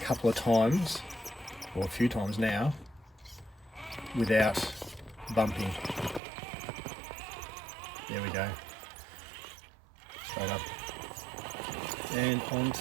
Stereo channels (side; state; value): left; drops out; at 6.2 s